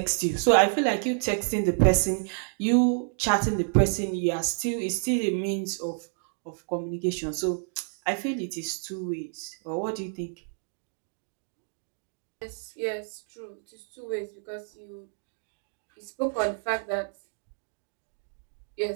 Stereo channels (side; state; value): left; silent; 58 dB below the other